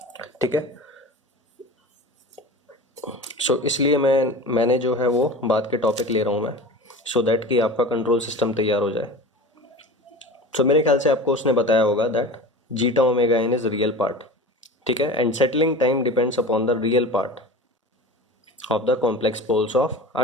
ठीक है, सो इसलिए मैंने जो है वो बात के टॉपिक ले रहा हूँ मैं. सो दैट कि आपका कंट्रोल सिस्टम तैयार हो जाए। सो मेरे ख्याल से आपको उसने बताया होगा that zeta omega n is real part, ठीक है, and settling time depends upon the real part of the complex poles of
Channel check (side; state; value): both; normal; correlation 0.34